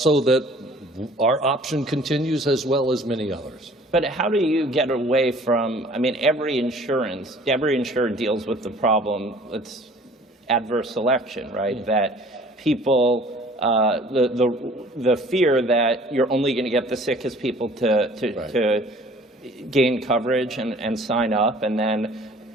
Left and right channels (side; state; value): both; normal; correlation 0.51